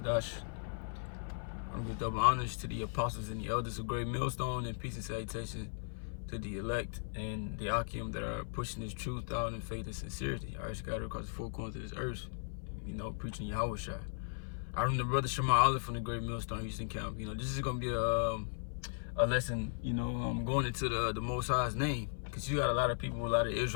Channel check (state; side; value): silent; right; 53 dB below the other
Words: want to give double honors to the apostles and the elders of Great Millstone, and peace and salutation to the elect and the Akim that are pushing this truth out in faith and sincerity. I scattered across the four corners of this earth, preaching YAHAWAH. I remember the brother Shema Olive from the Great Millstone Houston Camp. This is going to be a lesson, going into the Most High's name, because you got a lot of people, a lot of